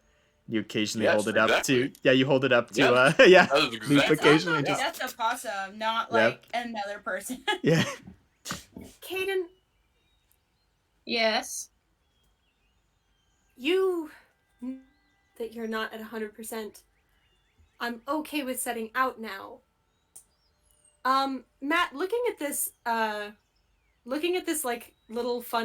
You occasionally Yes, hold it up to. exactly. Yeah, you hold it up to. Yeah. Yeah. That is Loop exactly. occasionally Yeah. just. That's a possum, not Yeah. like another person. Yeah. Caden, Yes. you that you're not at 100%. I'm okay with setting out now. Matt, looking at this like little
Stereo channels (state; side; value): identical; both; correlation 1.00